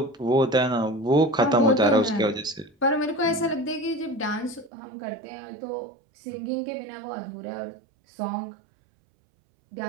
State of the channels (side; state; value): left; drops out; at 4.7 s